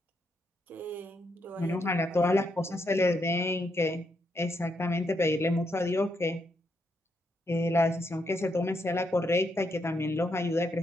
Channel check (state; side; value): normal; both; correlation 0.79